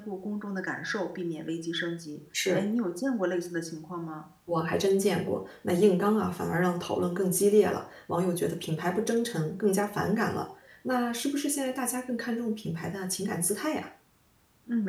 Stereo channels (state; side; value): identical; both; correlation 1.00